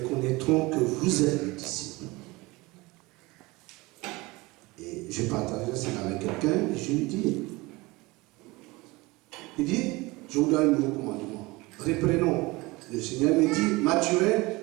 que vous êtes mes disciples. Et je partageais ça avec quelqu'un et je lui dis, il dit, je vous donne un nouveau commandement. Reprenons. Le Seigneur me dit, Mathurin,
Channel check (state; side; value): quieter; left; 22.5 dB